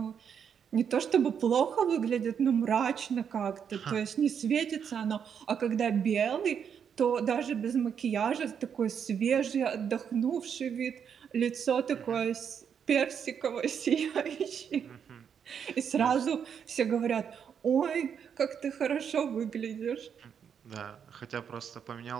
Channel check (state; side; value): quieter; left; 7.6 dB